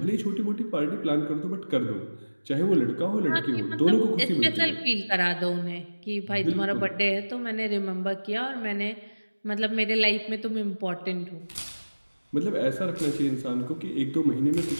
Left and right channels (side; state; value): both; inverted; correlation -1.00